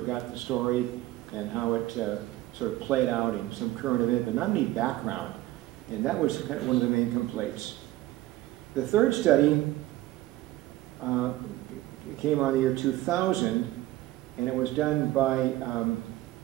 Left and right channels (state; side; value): quieter; left; 16.5 dB